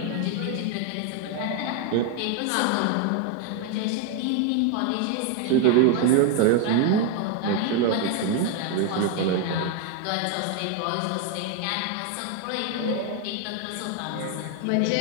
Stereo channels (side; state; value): both; different; correlation 0.01